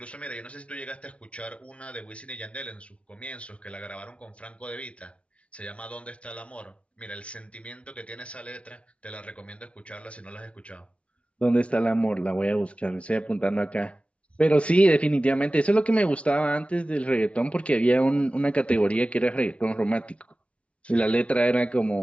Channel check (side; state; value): right; late; 0.062 ms